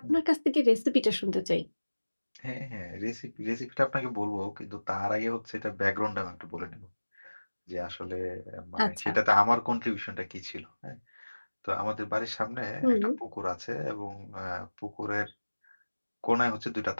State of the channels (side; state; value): both; inverted; correlation -1.00